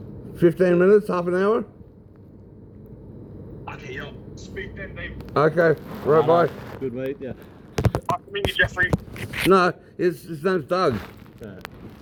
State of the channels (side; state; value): both; identical; correlation 1.00